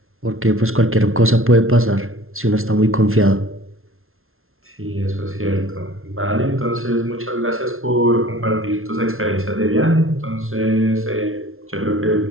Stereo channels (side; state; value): left; late; 0.61 ms